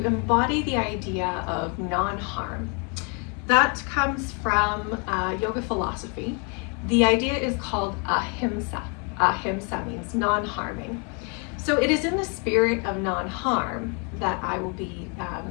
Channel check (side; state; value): right; quieter; 35.7 dB